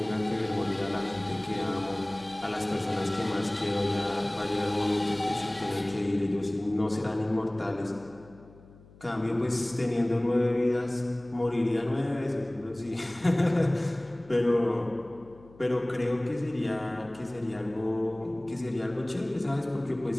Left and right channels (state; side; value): noise; left; hum, 23 dB below the sound